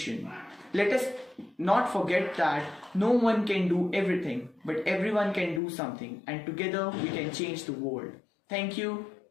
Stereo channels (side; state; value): right; drops out; at 5.6 s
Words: Let us not forget that no one can do everything, but everyone can do something, and together we can change the world. Thank you